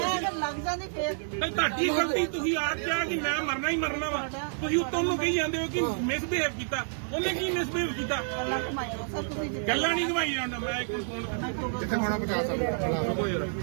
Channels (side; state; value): left; silent; digital silence